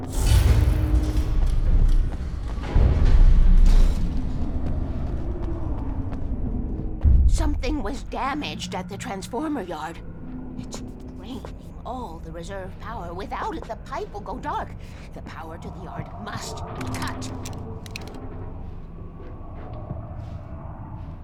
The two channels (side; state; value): both; identical; correlation 1.00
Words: Something was damaged at the transformer yard. It's draining all the reserve power. Without it, the pipe will go dark. The power to the yard must be cut.